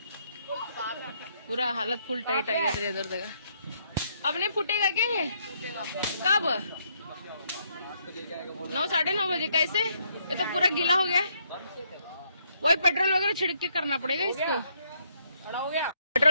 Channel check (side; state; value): both; inverted; correlation -0.72